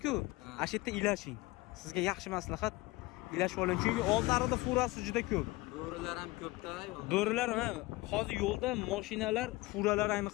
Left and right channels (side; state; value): right; quieter; 21.2 dB